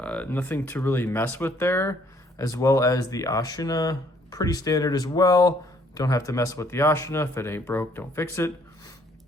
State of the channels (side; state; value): both; normal; correlation 0.64